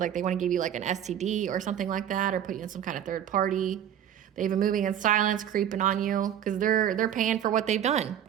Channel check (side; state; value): left; quieter; 10.1 dB